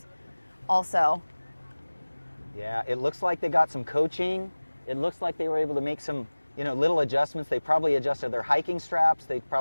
also. Yeah, it looks like they got some coaching. It looks like they were able to make some, little adjustments. They probably adjusted their hiking straps. They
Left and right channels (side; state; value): both; inverted; correlation -1.00